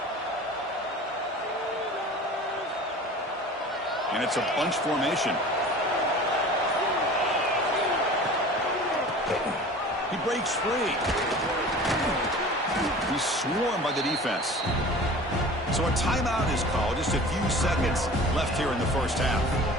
And it's a bunch formation. He breaks free. He's swarmed by the defense. So a timeout is called. Just a few seconds left here in the first half.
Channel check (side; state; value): both; normal; correlation 0.41